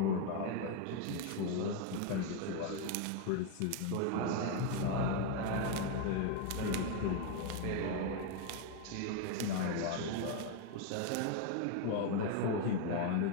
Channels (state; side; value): different; both; correlation 0.01